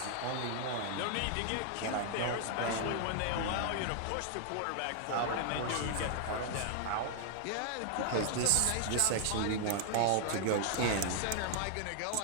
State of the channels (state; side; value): different; both; correlation 0.00